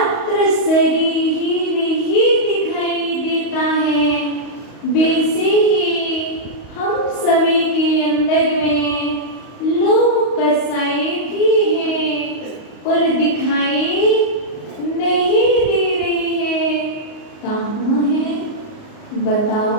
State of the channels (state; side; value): late; right; 38 ms